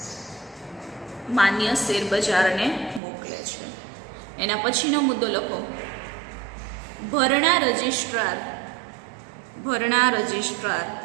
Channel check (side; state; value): left; drops out; at 3.0 s